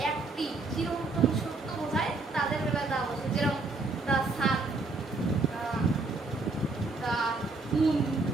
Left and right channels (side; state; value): left; quieter; 3.5 dB